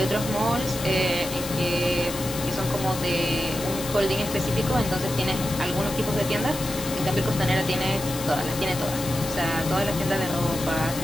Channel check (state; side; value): noise; left; hiss, 9 dB below the sound